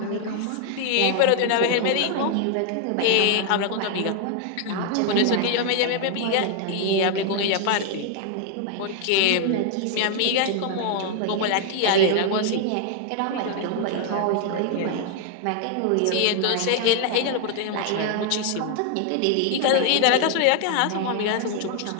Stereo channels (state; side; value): different; both; correlation 0.00